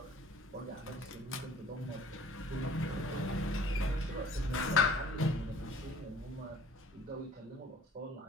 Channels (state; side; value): normal; both; correlation 0.52